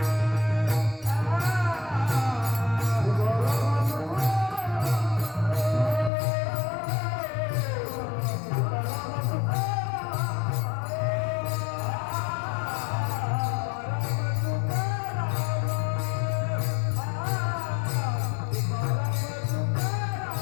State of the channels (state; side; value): drops out; right; at 6.1 s